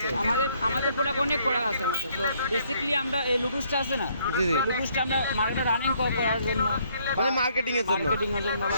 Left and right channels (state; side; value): inverted; both; correlation -0.67